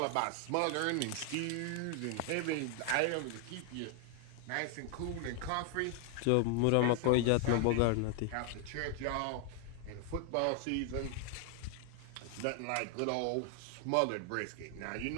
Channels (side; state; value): both; different; correlation 0.00